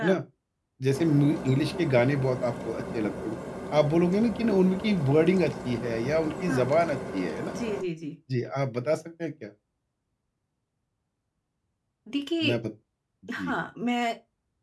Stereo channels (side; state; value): both; identical; correlation 1.00